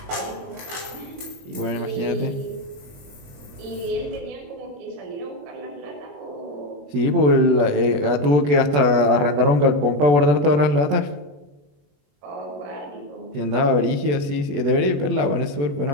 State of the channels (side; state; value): left; late; 21 ms